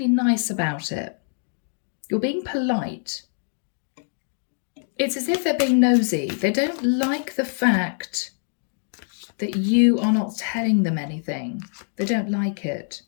nice about it. You're being polite. It's as if they're being nosy. They don't like the fact that you are not telling them anything. They don't like it.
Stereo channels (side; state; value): right; silent; digital silence